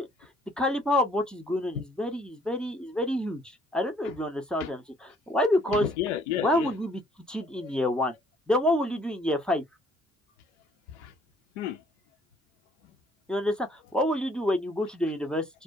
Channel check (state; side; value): normal; both; correlation 0.62